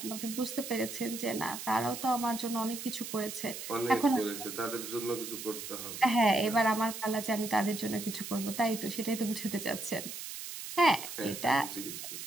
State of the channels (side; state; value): right; noise; hiss, 8 dB below the sound